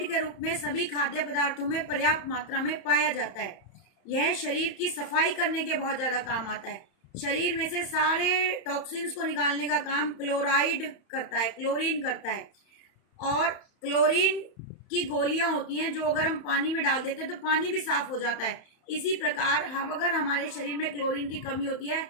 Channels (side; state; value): right; late; 31 ms